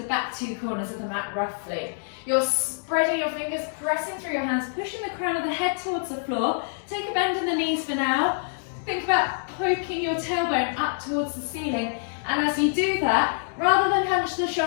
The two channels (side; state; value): right; silent; digital silence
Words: back 2 corners of the mat roughly. You're spreading your fingers, pressing through your hands, pushing the crown of the head towards the floor. Take a bend in the knees for now. Think about poking your tailbone up towards the ceiling. And as you do that, rather than hunch the